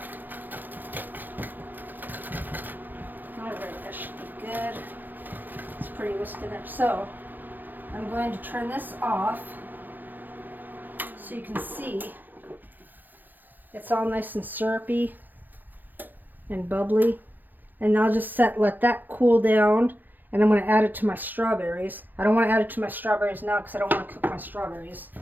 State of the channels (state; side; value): late; left; 0.087 ms